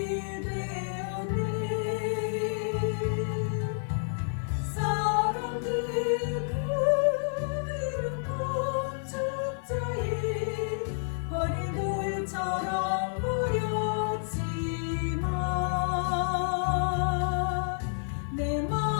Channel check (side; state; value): right; silent; 58 dB below the other